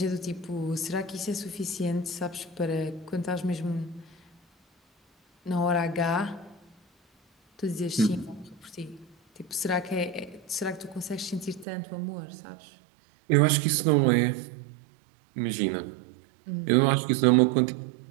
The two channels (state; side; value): drops out; left; at 11.7 s